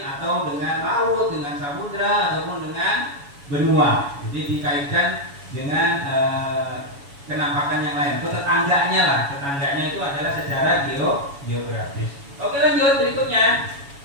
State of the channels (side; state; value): left; late; 7.1 ms